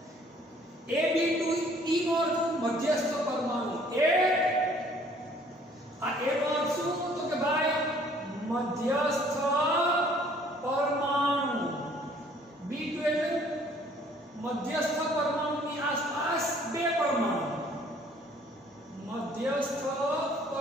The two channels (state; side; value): normal; both; correlation 0.58